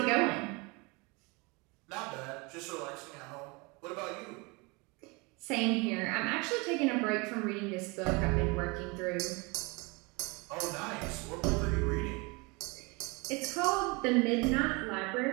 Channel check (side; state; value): left; quieter; 27.7 dB